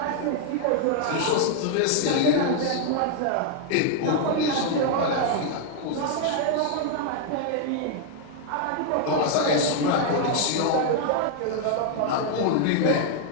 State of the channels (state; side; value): different; both; correlation 0.00